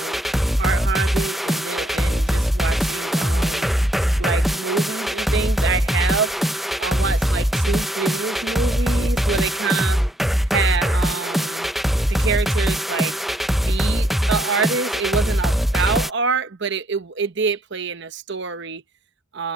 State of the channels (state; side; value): normal; both; correlation 0.70